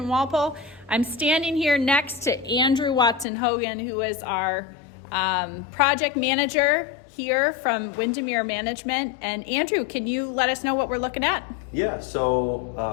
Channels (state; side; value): drops out; right; at 3.2 s